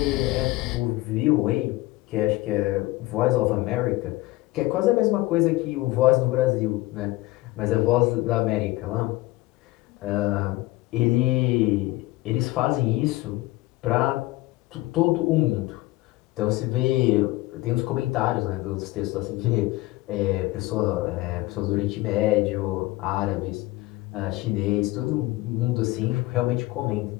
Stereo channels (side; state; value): right; quieter; 19.4 dB